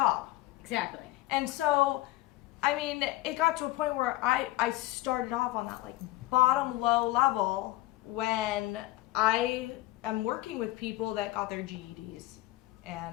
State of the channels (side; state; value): right; quieter; 17.8 dB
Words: Exactly. And so, I mean, it got to a point where I started off on that like bottom low level when I am working with people that got their GEDs,